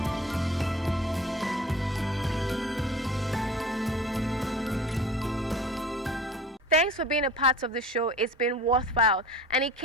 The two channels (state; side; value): normal; both; correlation 0.41